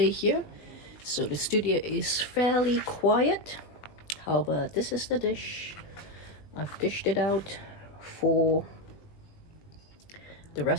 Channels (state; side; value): late; right; 20 ms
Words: here, so the studio is fairly quiet. However, this is the dish. I've dished it out for the